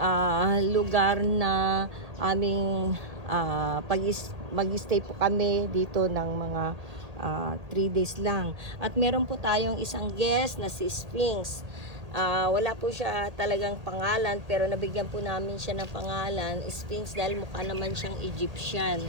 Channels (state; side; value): late; left; 1.9 ms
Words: lugar na aming mag-stay po kami dito ng mga 3 days lang. At meron po tayong isang guest na si Sphinx. Wala po siya talagang pangalan, pero nabigyan po namin siya ng pangalan Sphinx dahil mukha naman siyang Egyptian.